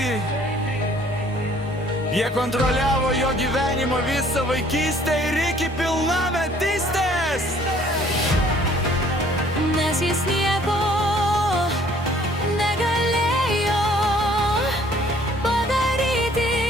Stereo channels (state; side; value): normal; both; correlation 0.58